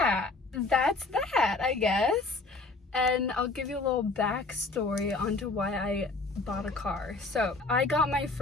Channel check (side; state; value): right; quieter; 3.5 dB